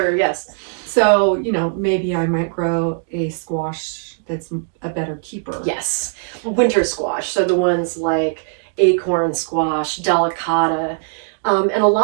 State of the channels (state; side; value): silent; left; digital silence